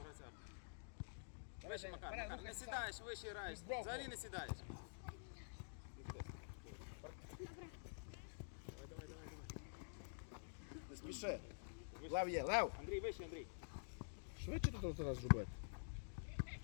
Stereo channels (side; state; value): right; silent; digital silence